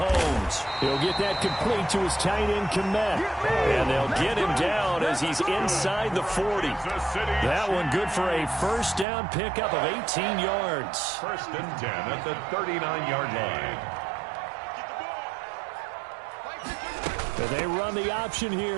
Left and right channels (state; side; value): drops out; left; at 9.1 s